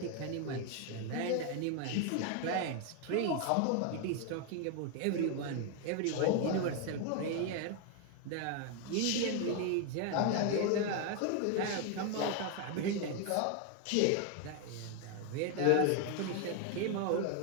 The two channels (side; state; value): both; different; correlation 0.01